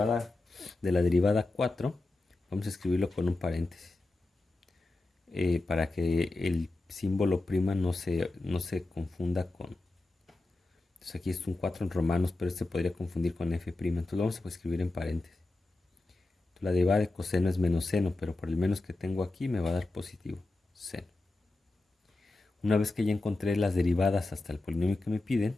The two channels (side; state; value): right; quieter; 3.0 dB